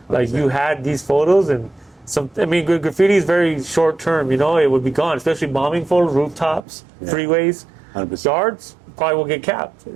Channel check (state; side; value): drops out; left; at 6.7 s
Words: Like you had these photos, and I mean, graffiti is very short term. You know, it would be gone, especially bombing photos, rooftops, freeways, 100%. yards. Probably will get capped.